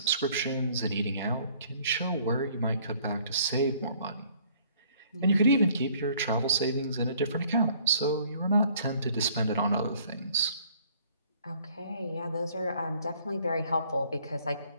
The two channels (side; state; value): both; inverted; correlation -0.59